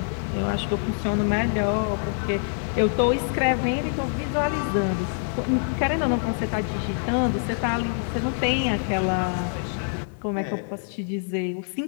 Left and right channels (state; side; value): silent; right; 62 dB below the other